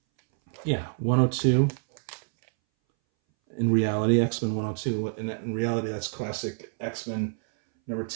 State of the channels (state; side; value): silent; left; 60 dB below the other